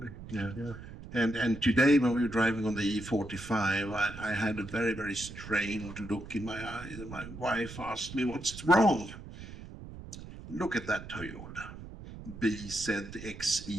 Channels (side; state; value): right; noise; rumble, 13 dB below the sound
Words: Yeah. And today, when we were driving on the E45, I had a very, very strained look in my eyes. And my wife asked me, what's wrong? Look at that Toyota.